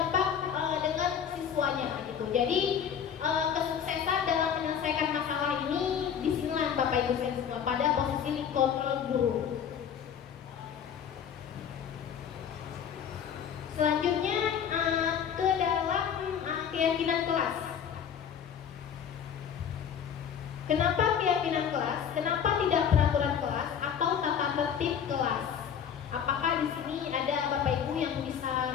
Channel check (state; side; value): quieter; right; 8.1 dB